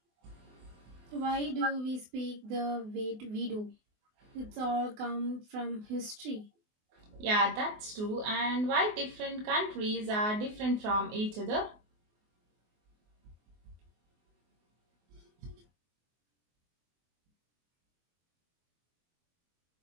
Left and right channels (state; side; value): late; left; 24 ms